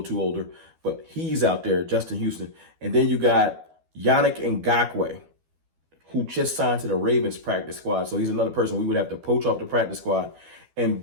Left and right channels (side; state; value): left; late; 12 ms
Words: too older, but he's out there, Justin Houston. And then you got Yannick Ngakoue, who just signed to the Ravens practice squad. So he's another person we would have to poach off the practice squad and